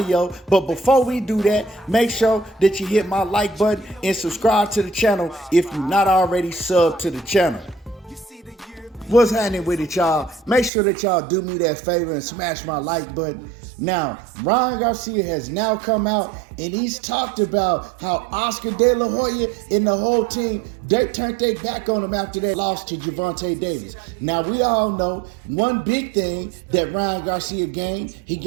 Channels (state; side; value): drops out; left; at 10.7 s